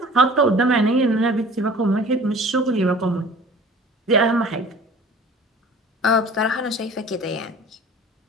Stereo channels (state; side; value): normal; both; correlation 0.45